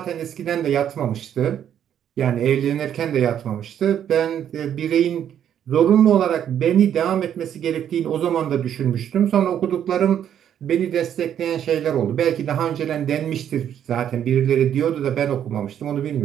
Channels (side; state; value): left; quieter; 9.7 dB